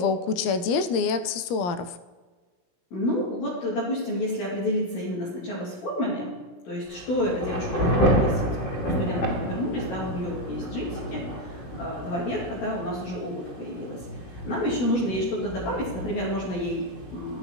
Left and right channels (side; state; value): right; late; 17 ms